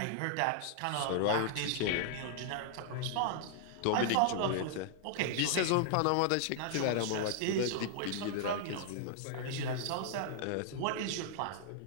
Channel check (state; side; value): different; both; correlation -0.01